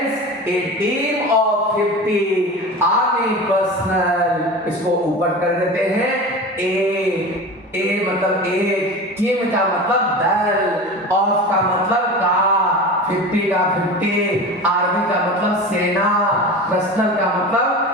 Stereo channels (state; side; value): normal; both; correlation 0.31